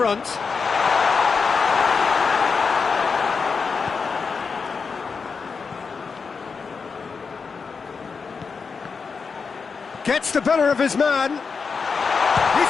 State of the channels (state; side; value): quieter; right; 5.2 dB